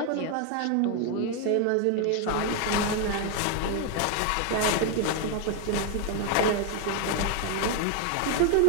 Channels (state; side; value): different; both; correlation 0.01